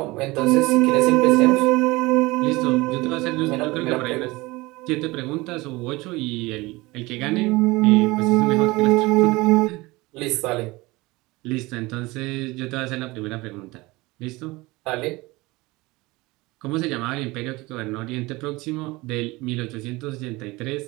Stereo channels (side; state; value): left; quieter; 22.0 dB